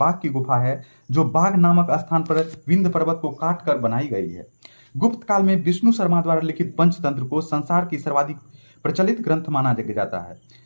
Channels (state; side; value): inverted; both; correlation -1.00